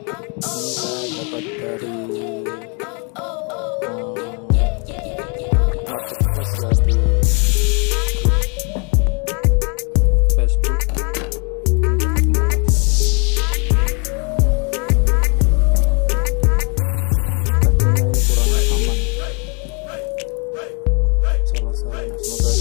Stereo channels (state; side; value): quieter; right; 35.4 dB